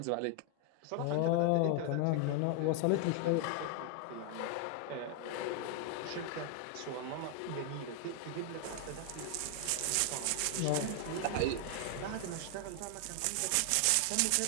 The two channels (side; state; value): both; different; correlation 0.00